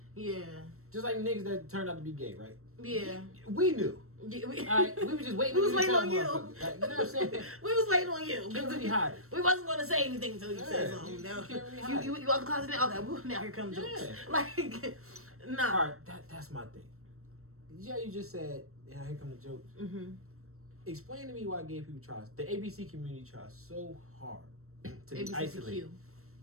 Yeah, Just like niggas that turned out to be gay, right? yeah. We knew. Yeah, we, Alright, we were just waiting. We was to waiting tell on you. motherfuckers. Like, you know what I'm saying? we was waiting on you. Can't really hide it. We wasn't gonna say anything until you said Yeah, something. you No. can't really hide You out the closet now? Okay, well, now here comes jokes. Yeah. Like, nah. All right, that's my thing. Yeah, you just said, yeah, here come the jokes. Mm-hmm. Explain to me why gay people try, the ABC community tries so hard to be isolated,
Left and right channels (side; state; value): left; late; 0.63 ms